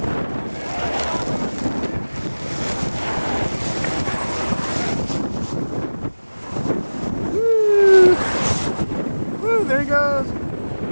Woo! There he goes.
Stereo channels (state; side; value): inverted; both; correlation -1.00